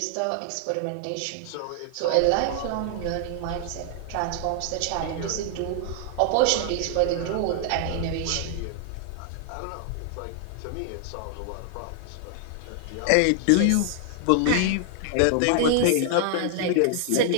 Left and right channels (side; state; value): both; different; correlation 0.00